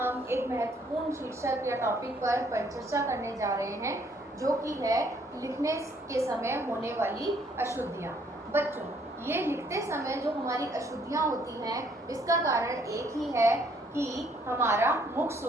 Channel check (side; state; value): both; normal; correlation 0.66